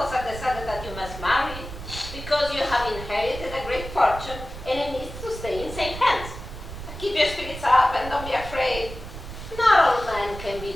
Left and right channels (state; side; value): noise; right; rumble, 11 dB below the sound